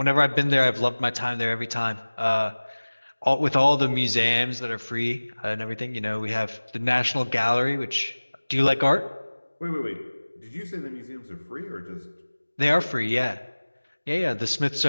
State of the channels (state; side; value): inverted; both; correlation -1.00